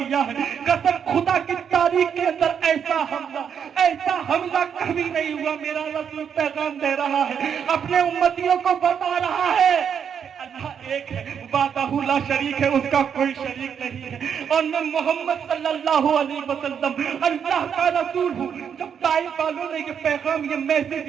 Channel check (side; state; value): left; quieter; 7.7 dB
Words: ہے, قسم خدا کی تاریخ کے اندر ایسا حملہ کبھی نہیں ہوا. میرا رسول پیغام دے رہا ہے, اپنے امتیوں کو بتا رہا ہے اللہ ایک ہے, وحدہ لا شریک ہے, اس کا کوئی شریک نہیں ہے, اور میں محمد صلی اللہ علیہ وسلم اللہ کا رسول ہوں. جب طائف والوں نے یہ پیغام, یہ میسج,